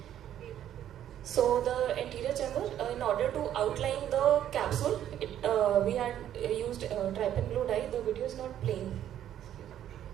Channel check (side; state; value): left; quieter; 11.0 dB